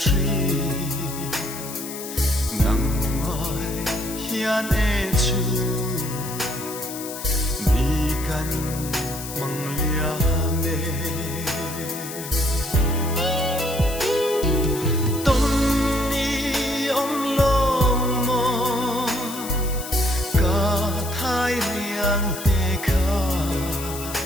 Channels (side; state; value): left; noise; hiss, 10 dB below the sound